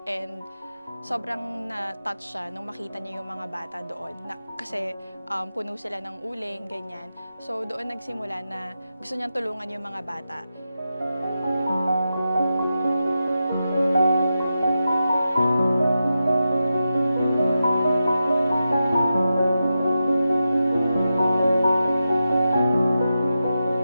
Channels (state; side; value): inverted; both; correlation -0.90